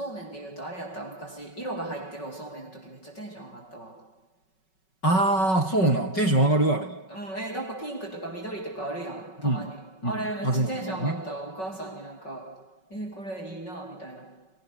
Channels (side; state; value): right; late; 5.3 ms